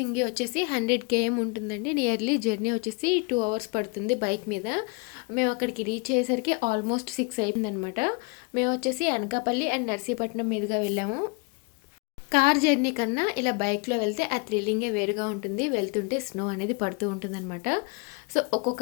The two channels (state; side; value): quieter; right; 29.9 dB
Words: వచ్చేసి 100 km ఉంటుందండి. నియర్లీ జర్నీ వచ్చేసి 2 hours పడుతుంది బైక్ మీద. మేము అక్కడికి రీచ్ అయ్యేసరికి ఆల్మోస్ట్ 6 అయిపోయిందనమాట. మేము వచ్చేసి అనకాపల్లి అండ్ నర్సీపట్నం మీదుగా వెళ్ళాము. కార్ జర్నీ కన్నా ఇలా బైక్లో వెళ్తే ఆ థ్రిల్లింగే వేరుగా ఉంటుంది. వెళ్తుంటే స్నో అనేది పడుతూ ఉంటుందన్నమాట. సో ఒక్కొక్క